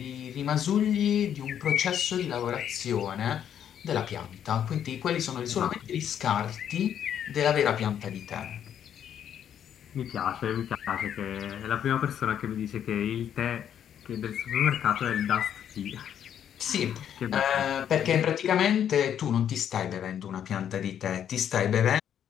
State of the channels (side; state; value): right; quieter; 9.4 dB